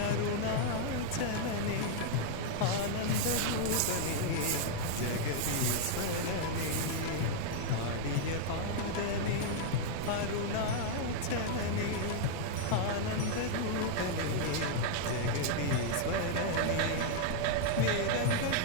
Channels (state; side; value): different; both; correlation -0.01